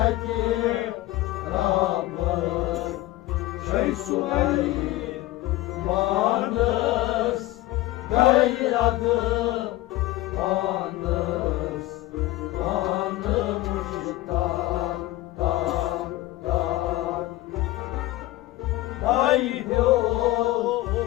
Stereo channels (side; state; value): right; quieter; 17.2 dB